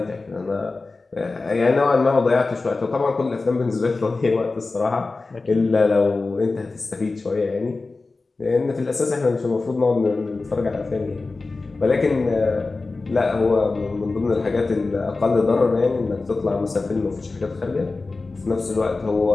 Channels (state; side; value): quieter; right; 3.6 dB